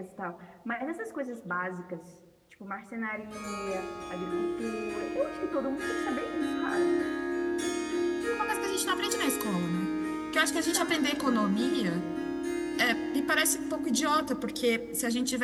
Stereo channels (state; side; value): identical; both; correlation 1.00